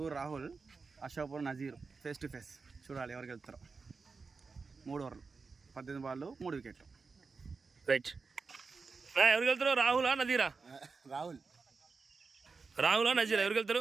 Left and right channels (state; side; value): quieter; left; 4.6 dB